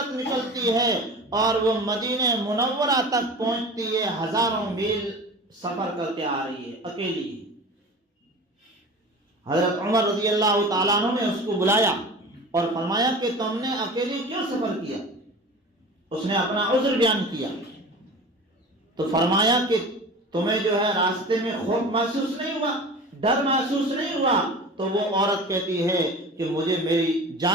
نکلتی ہے اور وہ مدینہ منورہ تک پہنچتی ہے، ہزاروں میل سفر کر کے آ رہی ہے اکیلی۔ حضرت عمر رضی اللہ تعالیٰ عنہ نے اس کو بلایا اور فرمایا کہ تم نے اکیلی کیوں سفر کیا؟ اس نے اپنا عذر بیان کیا تو فرمایا کہ تمہیں جو ہے راستے میں خوف محسوس نہیں ہوا، ڈر محسوس نہیں ہوا؟ تو وہ عورت کہتی ہے کہ مجھے میری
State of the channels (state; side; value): normal; both; correlation 0.36